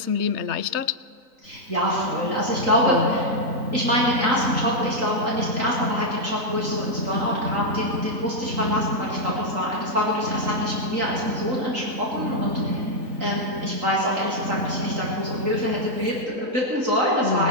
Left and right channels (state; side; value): late; left; 3.9 ms